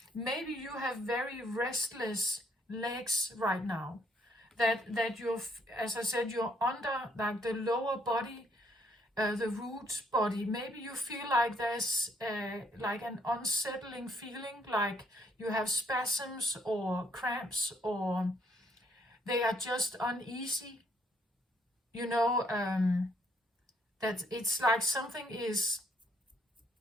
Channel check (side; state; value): both; normal; correlation 0.68